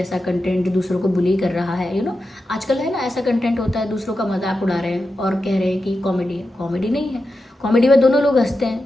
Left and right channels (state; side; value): normal; both; correlation 0.90